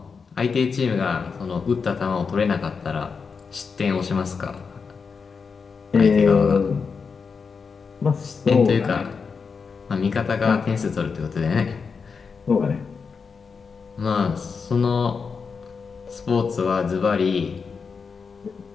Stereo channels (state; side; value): quieter; right; 5.4 dB